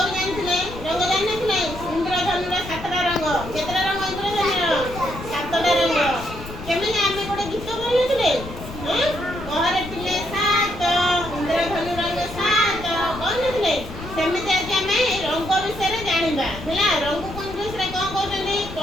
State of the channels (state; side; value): noise; left; rumble, 12 dB below the sound